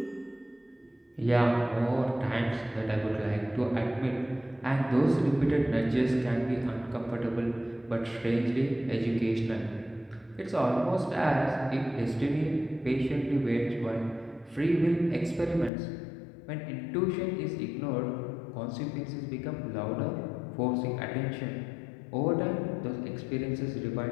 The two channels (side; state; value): right; drops out; at 15.7 s